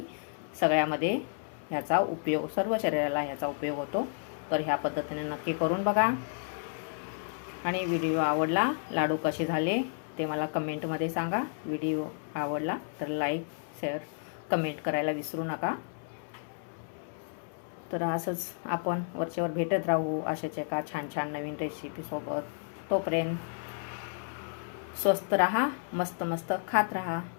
सगळ्यामध्ये ह्याचा उपयोग, सर्व शरीराला ह्याचा उपयोग होतो. तर ह्या पद्धतीने नक्की करून बघा. आणि व्हिडिओ आवडला, लाडू कसे झाले ते मला कमेंटमध्ये सांगा. व्हिडिओ आवडला तर लाईक, शेअर, कमेंट करायला विसरू नका. तर असंच आपण वरचेवर भेटत राहू अशाच एका छान छान नवीन रेसिपीसोबत. तोपर्यंत स्वस्त राहा, मस्त मस्त खात राहा.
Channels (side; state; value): right; silent; 57 dB below the other